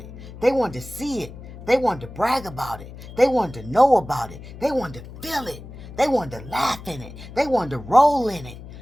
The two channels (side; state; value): left; noise; hum, 15 dB below the sound